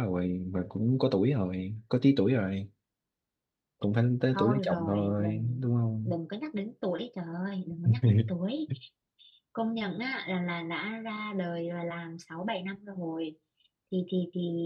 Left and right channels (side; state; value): both; identical; correlation 1.00